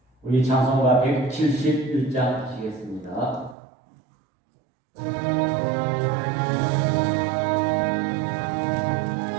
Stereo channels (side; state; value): left; drops out; at 3.6 s